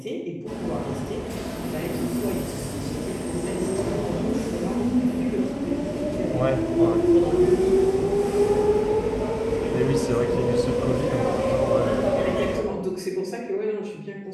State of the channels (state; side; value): identical; both; correlation 1.00